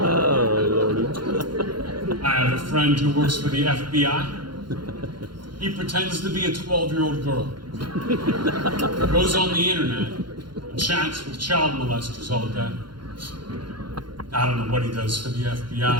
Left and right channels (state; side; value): late; left; 0.72 ms